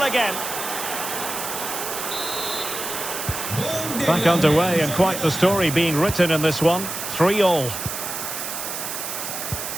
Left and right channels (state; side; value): noise; right; hiss, 5 dB below the sound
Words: again. Back underway, and quite the story being written in this one. 3-3.